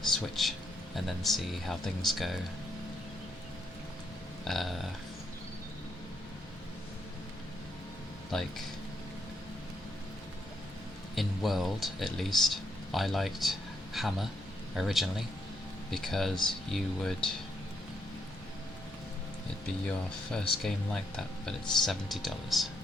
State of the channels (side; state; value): both; normal; correlation 0.78